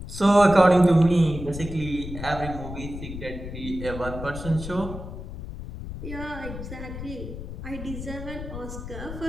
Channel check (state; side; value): noise; left; rumble, 9 dB below the sound